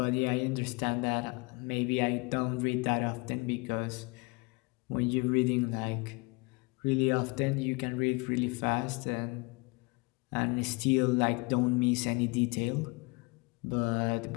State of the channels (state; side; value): quieter; right; 27.8 dB